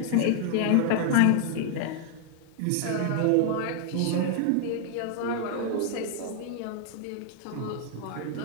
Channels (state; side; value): different; both; correlation 0.00